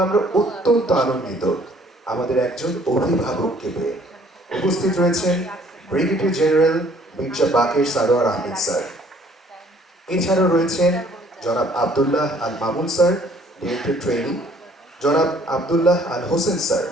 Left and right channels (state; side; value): normal; both; correlation 0.59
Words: আমরা অত্যন্ত আনন্দিত আমাদের একজন অভিভাবককে পেয়ে। উপস্থিত রয়েছেন brigadier general Mirza Baker Sarwar Ahmed sir. এছাড়াও রয়েছেন জনাব Abdullah Al Mamun sir, director training, জনাব Abdullah Al Hossain sir,